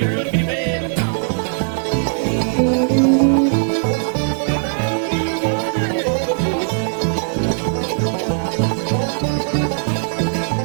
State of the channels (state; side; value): silent; left; digital silence